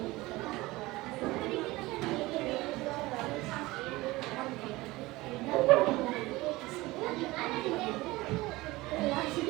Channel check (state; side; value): quieter; left; 20.1 dB